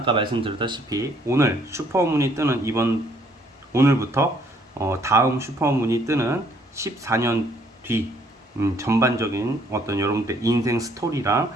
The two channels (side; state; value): both; normal; correlation 0.64